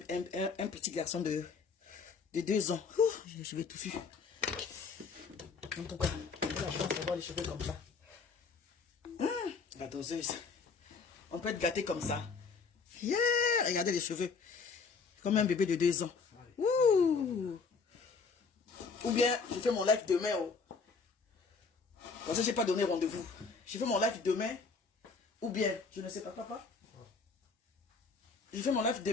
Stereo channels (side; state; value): right; quieter; 4.9 dB